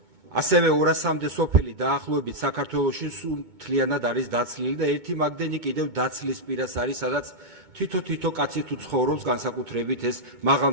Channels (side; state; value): left; late; 2.2 ms